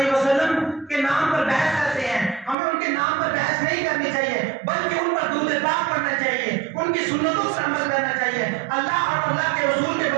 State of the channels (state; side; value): drops out; left; at 2.6 s